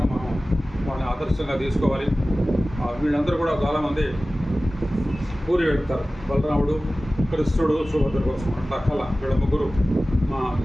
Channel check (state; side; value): normal; both; correlation 0.96